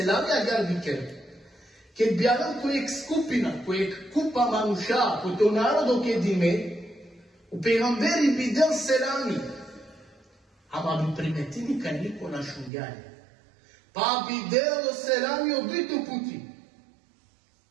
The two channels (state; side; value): drops out; left; at 12.7 s